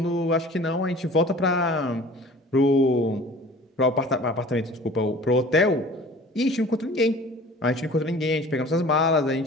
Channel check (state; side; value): normal; both; correlation 0.45